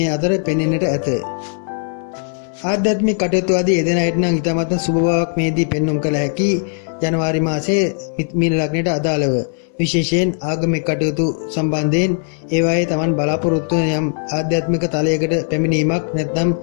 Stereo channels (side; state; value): right; silent; 67 dB below the other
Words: අතර පෙනෙන්නට ඇත. ආධ්‍යාත්මික කටයුතු ආදී යෙදෙන අයට නම් ඉතාමත් සුබ බවක් මේදී පෙන්눔 කළ හැකි. ජනවාරි මාසයේ මීන ලග්නයට අදාළව විශේෂයෙන් ආගමික කටයුතු සම්බන්ධයෙන් ඒවායේ තමන් බලාපොරොත්තු වන යම් ආධ්‍යාත්මික තලයකට පැමිණීමක් නැත්නම්